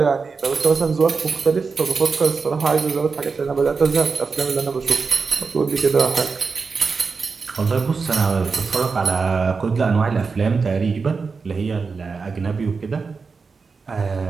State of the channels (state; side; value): quieter; left; 4.8 dB